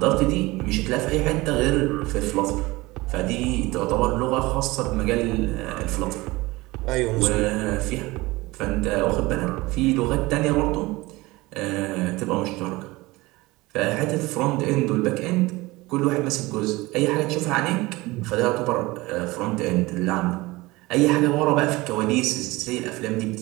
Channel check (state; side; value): quieter; left; 21.1 dB